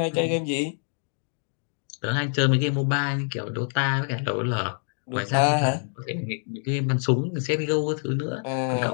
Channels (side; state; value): right; silent; 61 dB below the other